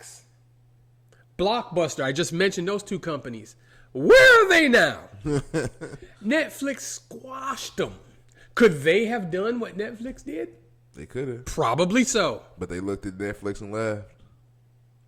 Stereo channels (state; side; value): identical; both; correlation 1.00